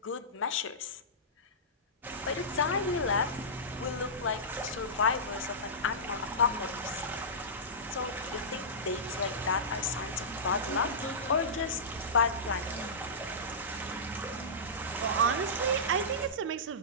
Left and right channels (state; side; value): normal; both; correlation -0.17